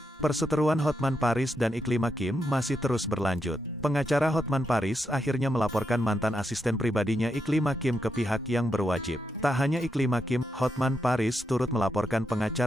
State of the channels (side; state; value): both; normal; correlation 0.83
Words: Perseteruan Hotman Paris dan Iklim Hakim masih terus berlanjut. Pengacara Hotman Paris akhirnya melaporkan mantan asisten pribadinya Iklim Hakim ke pihak yang berwajib. Tak hanya Iklim Hakim, Hotman Paris turut melaporkan